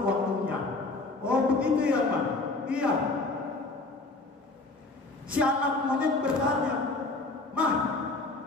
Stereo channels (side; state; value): right; quieter; 3.2 dB